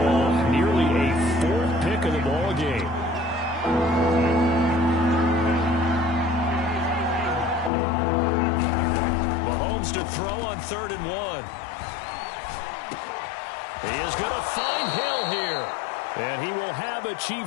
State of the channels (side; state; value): right; drops out; at 7.7 s